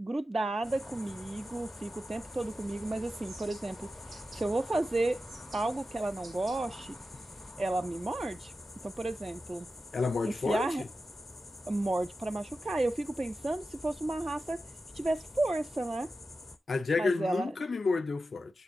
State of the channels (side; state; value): both; normal; correlation 0.92